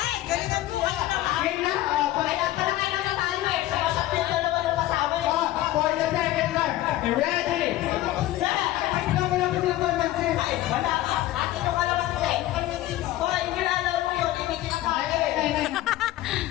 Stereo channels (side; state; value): right; quieter; 15.3 dB